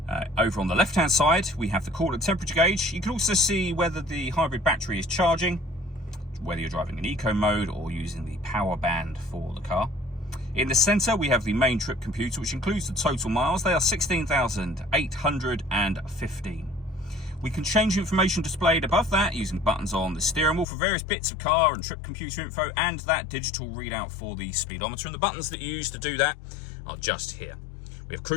Over on the left hand side we have the coolant temperature gauge. You can also see whether the hybrid battery is charging, whether you're driving in eco mode or using the power band for the car. In the centre we have the main trip computer, which includes the total miles. They are 16,815. We can change information displayed above that using buttons on the steering wheel for various bits of car and trip computer info, and that digital readout for the speedometer. And the buttons that you use to do that are just here. We have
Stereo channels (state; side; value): drops out; right; at 20.7 s